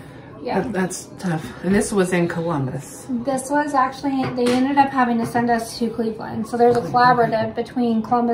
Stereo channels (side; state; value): both; identical; correlation 1.00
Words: Yeah. That's tough. And this was in Columbus. This was actually, they ended up having to send us to Cleveland. So there's a collaborative between